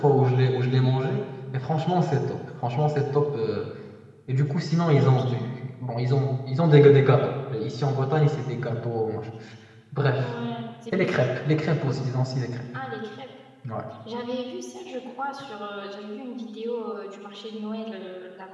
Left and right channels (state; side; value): identical; both; correlation 1.00